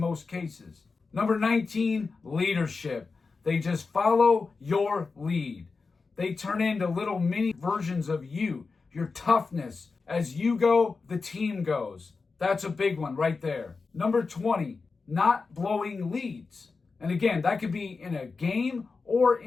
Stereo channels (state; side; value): quieter; right; 4.4 dB